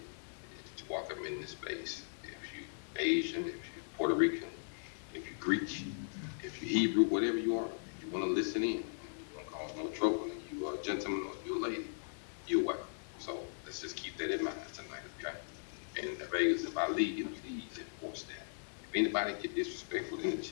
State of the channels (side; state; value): right; silent; digital silence